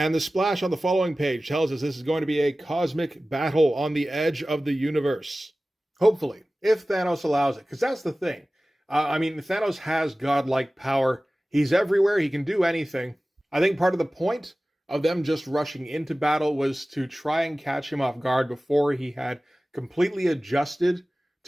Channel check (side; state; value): both; normal; correlation 0.97